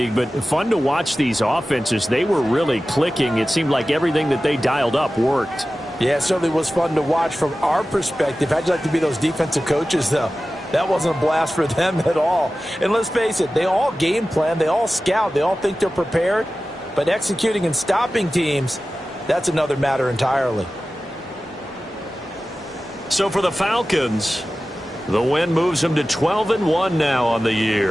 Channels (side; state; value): both; normal; correlation 0.95